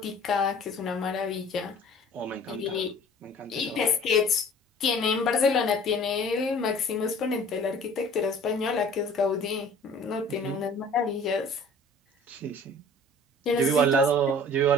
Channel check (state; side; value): normal; both; correlation 0.48